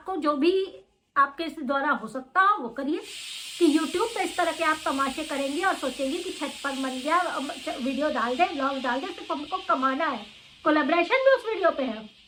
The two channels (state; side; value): identical; both; correlation 1.00